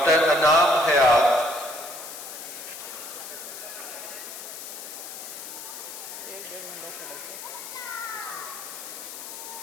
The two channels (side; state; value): left; noise; hiss, 10 dB below the sound